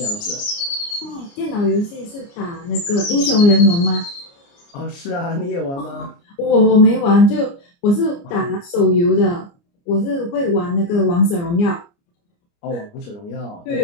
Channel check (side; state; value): right; late; 29 ms